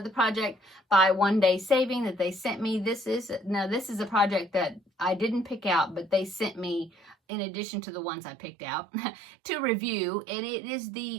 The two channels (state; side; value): drops out; left; at 7.2 s